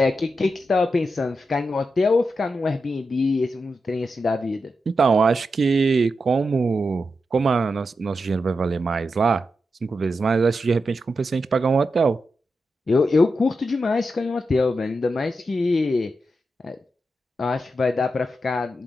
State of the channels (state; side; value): normal; both; correlation 0.88